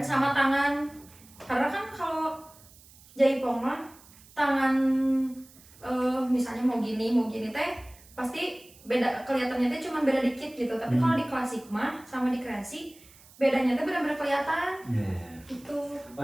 tangan. Karena kan kalau jaipong mah tangan misalnya mau gini teh pasti beda, kelihatannya teh cuma beda dikit gitu. Tapi kalau di klasik mah sama di kreasi bedanya teh benar-benar kelihatan gitu. Oh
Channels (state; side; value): noise; right; hiss, 24 dB below the sound